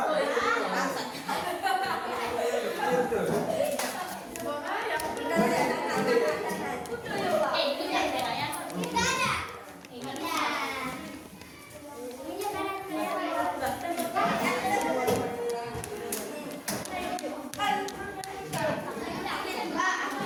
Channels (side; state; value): both; identical; correlation 1.00